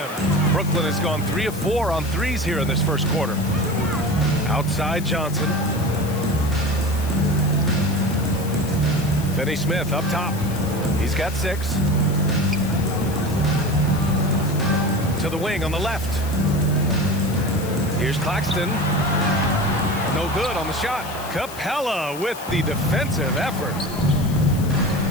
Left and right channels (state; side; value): noise; left; hiss, 15 dB below the sound